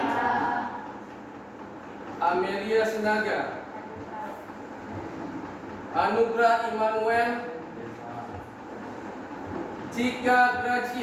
Amelia Sinaga, Anugrah Immanuel, Cika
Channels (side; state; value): both; identical; correlation 1.00